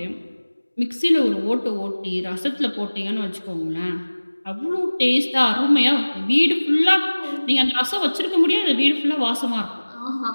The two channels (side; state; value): both; inverted; correlation -1.00